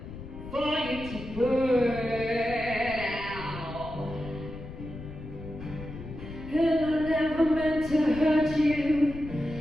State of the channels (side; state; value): left; noise; rumble, 11 dB below the sound